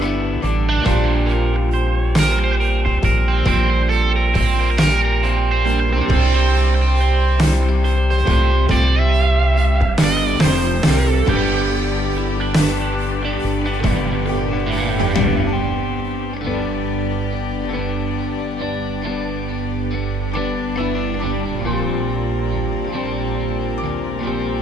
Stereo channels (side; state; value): both; normal; correlation 0.78